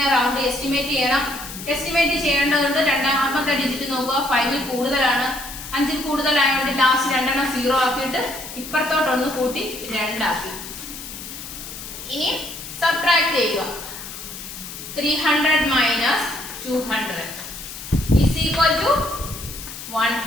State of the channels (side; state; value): left; noise; hiss, 11 dB below the sound